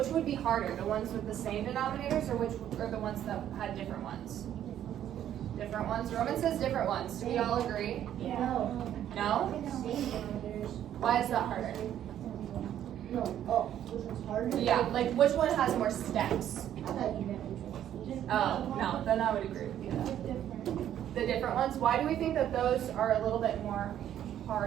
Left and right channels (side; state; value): left; quieter; 10.9 dB